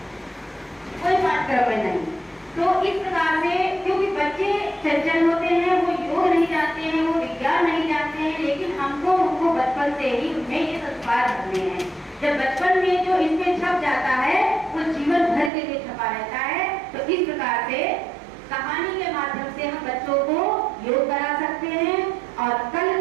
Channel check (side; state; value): left; drops out; at 15.5 s